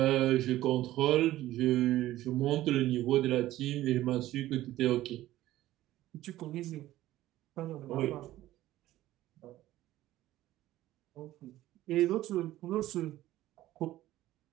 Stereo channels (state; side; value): quieter; left; 15.1 dB